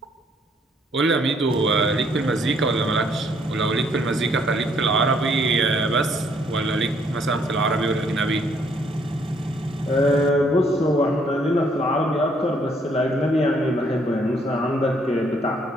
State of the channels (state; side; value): normal; both; correlation 0.67